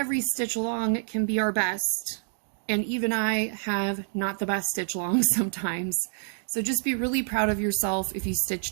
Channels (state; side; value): silent; left; 60 dB below the other